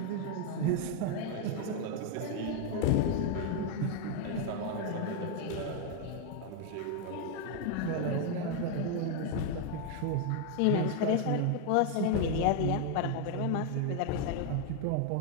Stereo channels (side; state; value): both; different; correlation 0.01